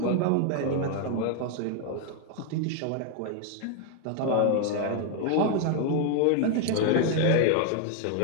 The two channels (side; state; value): both; different; correlation 0.00